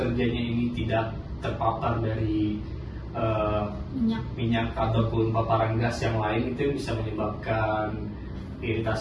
ini tidak terpapar dari minyak ataupun paparan gas yang lain itu bisa menyebabkan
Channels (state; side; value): identical; both; correlation 1.00